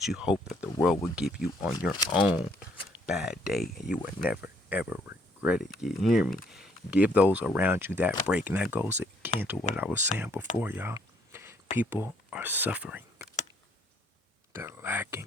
you hope that the world will give you on your own bad day, and you will never, ever regret it. You hear me? Give those around you that break. And that goes again to what I was saying before, y'all. People are suffering. They're lacking,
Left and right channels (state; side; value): normal; both; correlation 0.66